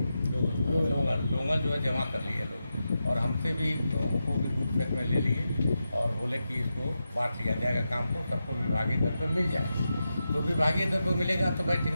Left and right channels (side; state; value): both; inverted; correlation -0.89